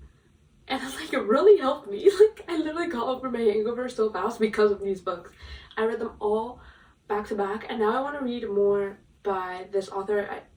And like, it really helped me. Like, I literally got over my hangover so fast because of these books. I read them all back to back, and now I want to read more by this author.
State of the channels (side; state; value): both; identical; correlation 1.00